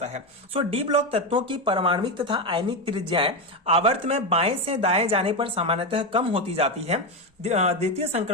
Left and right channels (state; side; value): normal; both; correlation 0.12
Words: है। सो डी ब्लॉक तत्वों की परमाणविक तथा आयनिक त्रिज्याएं आवर्त में बाएं से दाएं जाने पर सामान्यतः कम होती जाती है। द्वितीय